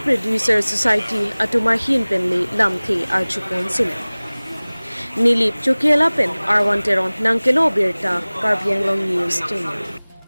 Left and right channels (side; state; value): both; inverted; correlation -1.00